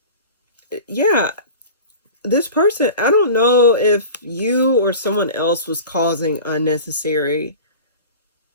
yeah, this person, I don't know if you or someone else was causing unnecessary...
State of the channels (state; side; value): inverted; both; correlation -0.36